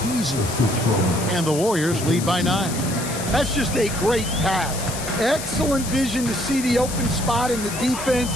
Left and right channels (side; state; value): left; noise; hiss, 8 dB below the sound